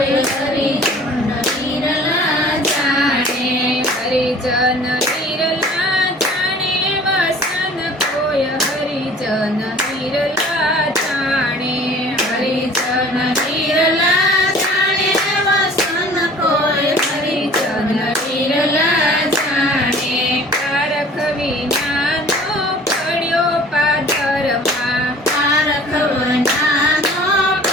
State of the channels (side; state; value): both; normal; correlation 0.48